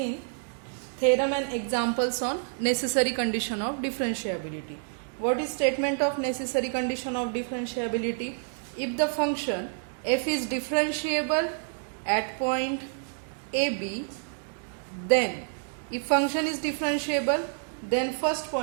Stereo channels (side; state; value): left; silent; digital silence